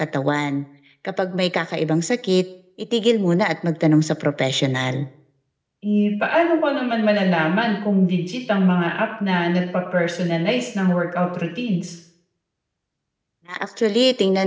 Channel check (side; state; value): both; identical; correlation 1.00